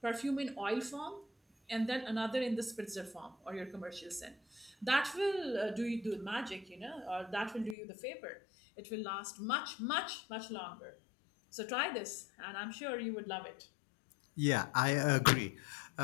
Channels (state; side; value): drops out; right; at 7.8 s